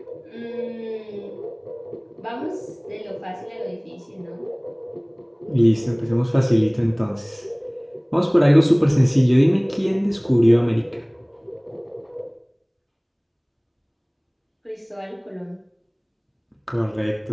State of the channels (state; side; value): identical; both; correlation 1.00